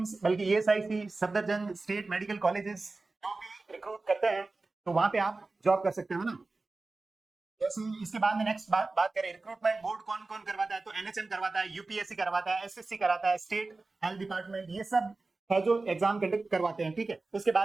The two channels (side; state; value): left; quieter; 3.5 dB